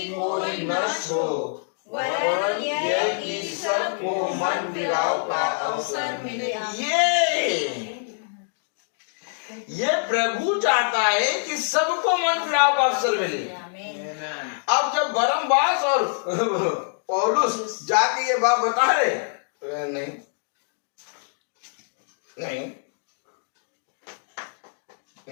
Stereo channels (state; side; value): silent; right; digital silence